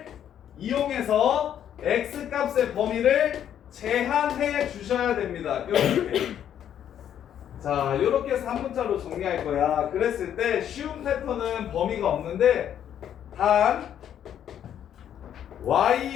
이용해서 x 값의 범위를 제한해 주셔야 됩니다. 이렇게. 자, 이렇게 해서 한 문자로 정리할 거야. 그랬을 때 쉬운 패턴은 범위가 없는데 단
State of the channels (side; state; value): right; quieter; 9.9 dB